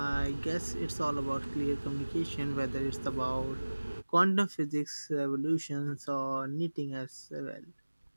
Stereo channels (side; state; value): both; inverted; correlation -1.00